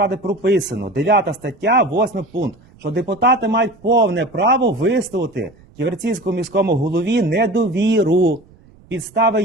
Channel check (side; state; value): right; noise; rumble, 27 dB below the sound